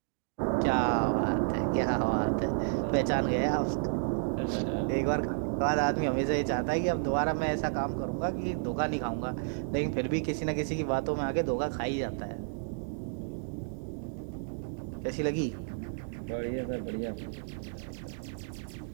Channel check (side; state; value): left; silent; digital silence